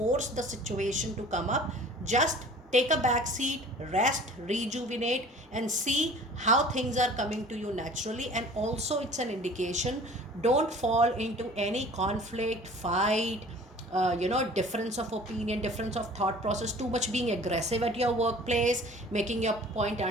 the situation to come up. Just take a back seat, rest, rejuvenate, and see how things are coming to you naturally. And also it's an indication, don't fall into any conflict, fight, difference of opinion, difference of thought process, too much being aggressive at your workplace, making your point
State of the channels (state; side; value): normal; both; correlation 0.47